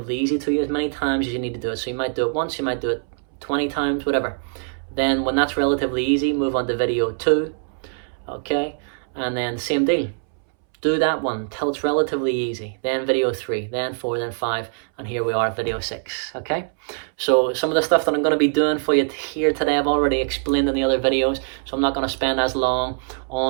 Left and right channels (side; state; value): left; silent; 64 dB below the other